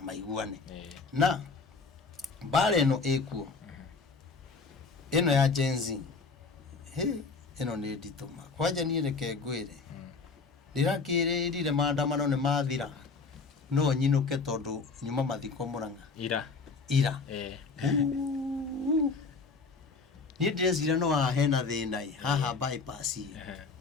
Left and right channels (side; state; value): right; quieter; 4.5 dB